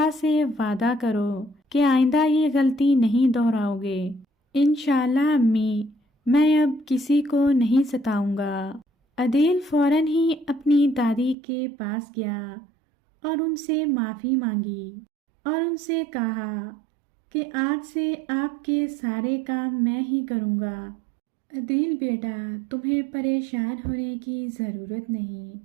سے وعدہ کرو کہ آئندہ یہ غلطی نہیں دہراؤ گے۔ انشاءاللہ امی، میں اب کسی کو نہیں ستاؤں گا۔ عدیل فوراً ہی اپنی دادی کے پاس گیا اور ان سے معافی مانگی۔ اور ان سے کہا کہ آج سے آپ کے سارے کام میں ہی کروں گا۔ عدیل بیٹا، تمہیں پریشان ہونے کی ضرورت نہیں،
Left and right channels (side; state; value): left; drops out; at 11.4 s